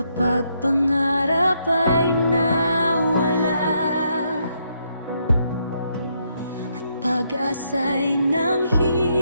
pangarap ay nawala at pag-asa'y nanghihina,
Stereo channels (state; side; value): inverted; both; correlation -0.76